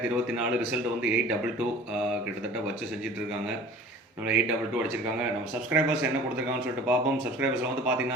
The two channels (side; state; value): both; normal; correlation 0.44